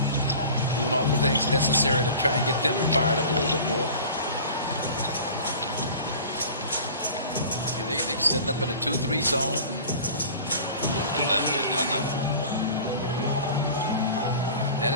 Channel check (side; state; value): both; inverted; correlation -0.40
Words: doing all the things necessary to try and get them fired up a little bit more. Yeah, they're setting up in a 2-3 zone. That